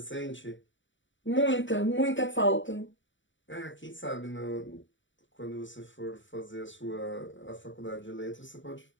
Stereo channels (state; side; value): late; right; 0.55 ms